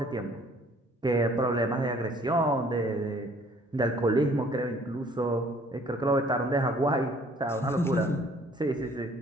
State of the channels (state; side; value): normal; both; correlation 0.58